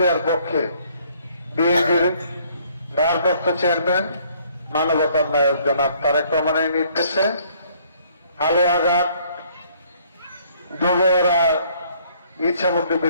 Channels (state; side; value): inverted; both; correlation -0.62